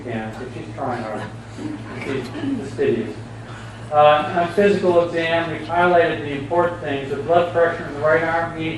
cans, so she's trying hard. She's fastidious. On physical exam, we've highlighted the important things. The blood pressure in the right arm,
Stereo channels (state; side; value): identical; both; correlation 1.00